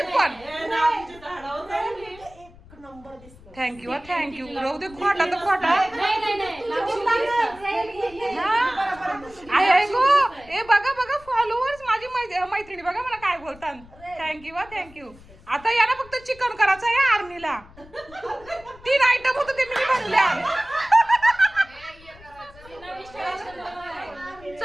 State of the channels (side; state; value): left; noise; rumble, 22 dB below the sound